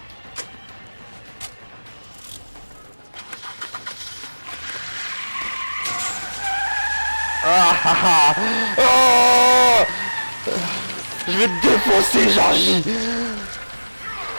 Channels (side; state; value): both; inverted; correlation -1.00